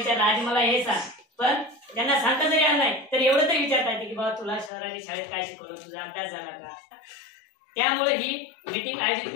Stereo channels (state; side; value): drops out; right; at 4.7 s